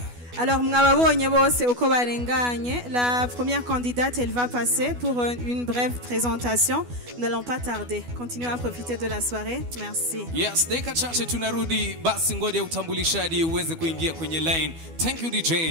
Alors, mwababonye bose uko barenganye. La première candidate, elle va passer pour une brève présentation. Nous n'allons pas tarder. Continuez à profiter de la soirée. Merci. Yes, dakika chache tunarudi, basi ngoja utambulishaji uweze kuingia kwenye line. Thank you DJ.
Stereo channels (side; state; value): left; late; 12 ms